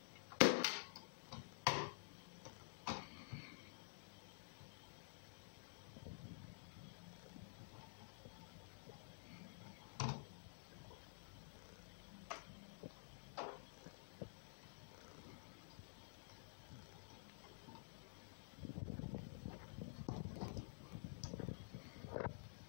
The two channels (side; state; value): right; silent; digital silence